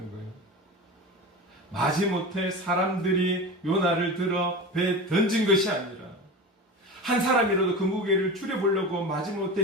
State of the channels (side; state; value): both; normal; correlation 0.29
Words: 거예요. 마지못해 사람들이 요나를 들어 배에 던진 것이 아니라, 한 사람이라도 그 무게를 줄여보려고